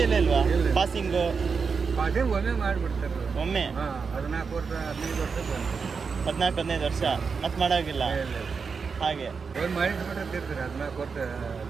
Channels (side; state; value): left; quieter; 5.4 dB